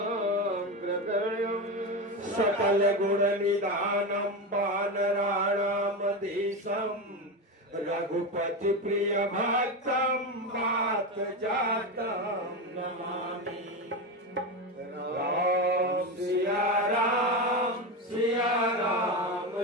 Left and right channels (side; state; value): both; normal; correlation 0.17